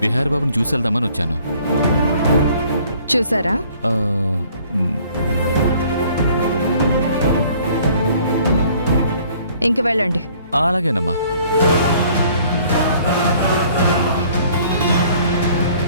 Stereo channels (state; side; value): inverted; both; correlation -0.57